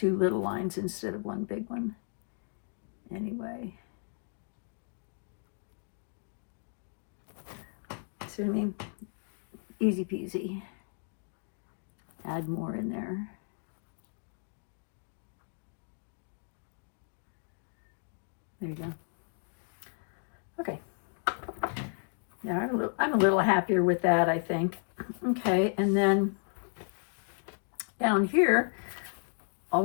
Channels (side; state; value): right; silent; 55 dB below the other